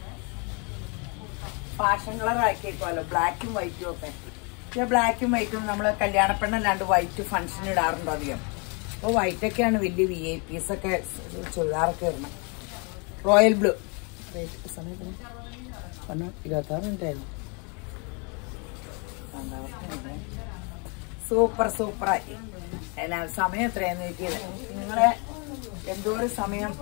ഫാഷൻ കളർ ആക്കിയേക്കുമല്ലോ. ബ്ലാക്കും വൈറ്റും ഒക്കെ. പക്ഷെ ബ്ലാക്കും വൈറ്റും നമ്മള് കല്യാണപ്പെണ്ണല്ലാണ്ട് വൈറ്റ് ഫംഗ്ഷൻ ഇടാറുണ്ടോ അധികം. അപ്പൊ വൈറ്റൊക്കെയാണ് വലിയ VIPs ഒക്കെ ചുരിദാറൊക്കെ ഇടണം. Royal blue. സമയത്തിന് 26 മിനിറ്റായിരുന്നു. സൂപ്പർ സൂപ്പറായി. എന്നാ സമയം എത്രയാന്ന് നോക്കിയത്. നിങ്ങളെ എന്തോരം സമയം,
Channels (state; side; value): quieter; right; 34.0 dB